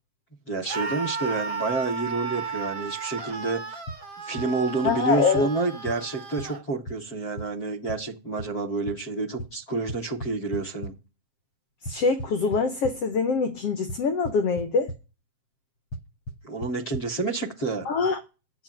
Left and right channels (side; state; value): right; late; 7.5 ms